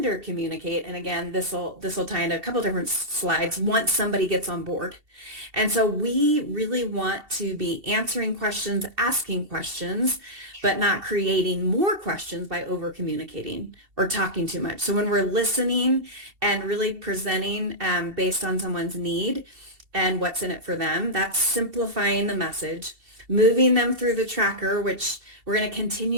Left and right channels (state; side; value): late; left; 2.7 ms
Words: communicate. And again, this will tie into a couple different slides once somebody gets on board. And so we really want to be answering questions, asking questions, but not creating more questions by over communicating or talking too much. So when we're listening and really presenting based on someone's need and what's in it for them, that's simplifying the message, moving them through the tracker, which we're going to